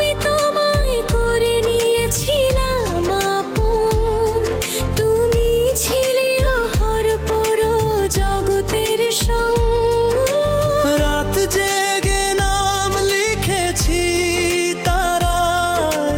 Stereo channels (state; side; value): identical; both; correlation 1.00